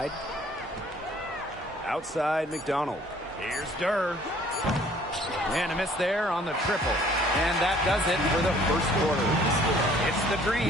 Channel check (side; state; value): both; normal; correlation 0.57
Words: Outside McDonald. Here's Durr. And a miss there on the triple. And that does it for the first quarter. It's the